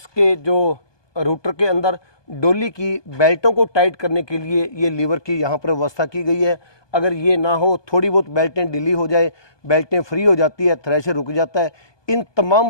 जो रूटर के अंदर डोली की बेल्टों को टाइट करने के लिए ये लीवर की यहाँ पर व्यवस्था की गई है। अगर ये ना हो, थोड़ी बहुत बेल्टें ढीली हो जाए, बेल्टें फ्री हो जाती है, थ्रेशर रुक जाता है। इन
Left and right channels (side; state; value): right; late; 1.2 ms